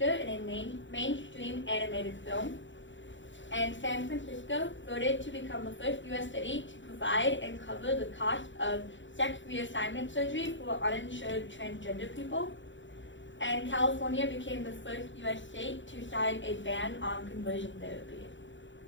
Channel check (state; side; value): late; right; 0.54 ms